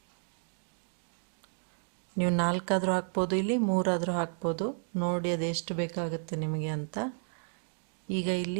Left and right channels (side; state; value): left; silent; 56 dB below the other